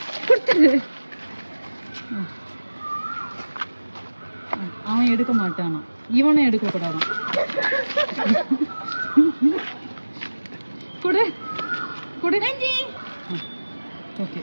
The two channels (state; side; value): inverted; both; correlation -1.00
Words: அவன் எடுக்க மாட்டானா, இவனும் எடுக்க கூடாதான். கொடு. ஓகே,